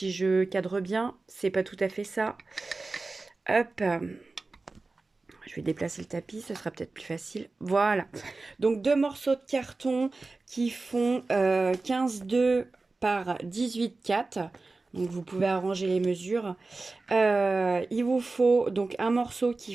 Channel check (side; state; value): left; quieter; 3.5 dB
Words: je cadre bien. C'est pas tout à fait ça. Hop. Je vais déplacer le tapis, ce sera peut-être plus facile. Voilà. Donc deux morceaux de carton qui font 15,2 par 18,4. Donc vous pouvez arranger les mesures. Il vous faut donc un morceau qui